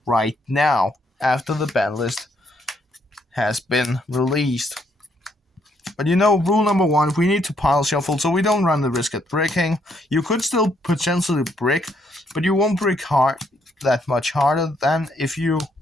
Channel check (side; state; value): both; normal; correlation 0.72